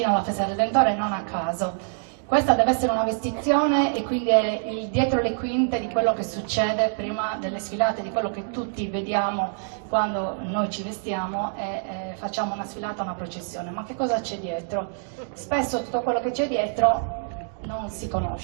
alla Festa del Redentore non a caso. Questa deve essere una vestizione e quindi è il dietro le quinte di quello che succede prima delle sfilate, di quello che tutti vediamo quando noi ci vestiamo e facciamo una sfilata, una processione. Ma che cosa c'è dietro? Spesso tutto quello che c'è dietro non si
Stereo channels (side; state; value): left; silent; digital silence